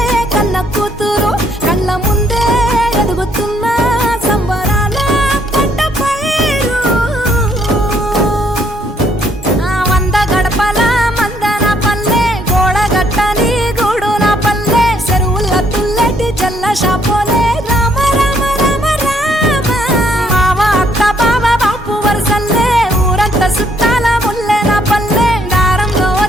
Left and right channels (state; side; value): normal; both; correlation 0.69